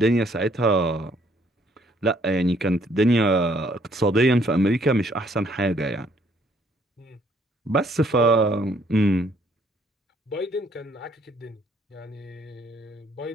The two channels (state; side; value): normal; both; correlation 0.65